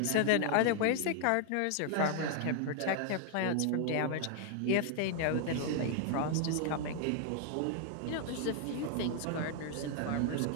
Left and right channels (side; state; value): both; different; correlation 0.00